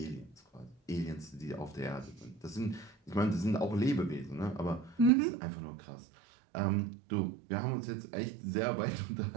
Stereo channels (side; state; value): left; drops out; at 5.1 s